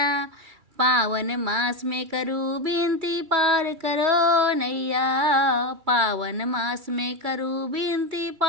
पावन मास में करूँ विनती पार करो नैया। पावन मास में करूँ विनती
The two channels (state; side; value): late; left; 2.3 ms